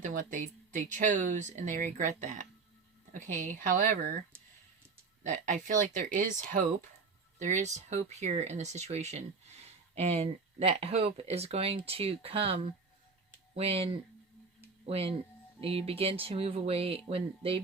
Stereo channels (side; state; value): left; quieter; 4.6 dB